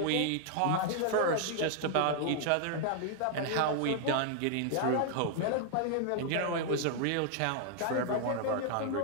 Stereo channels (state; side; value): different; both; correlation 0.00